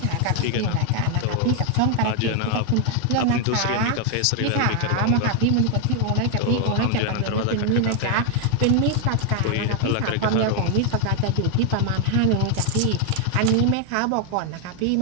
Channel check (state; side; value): different; both; correlation 0.00